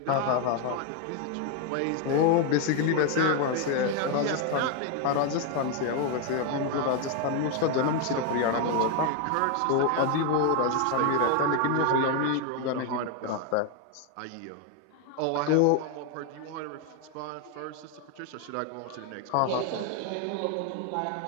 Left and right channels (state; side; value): different; both; correlation 0.01